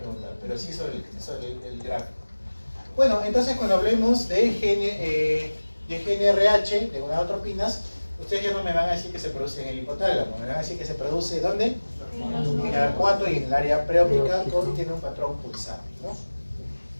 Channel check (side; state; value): both; inverted; correlation -1.00